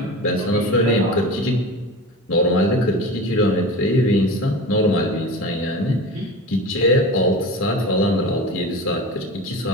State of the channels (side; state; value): both; normal; correlation 0.32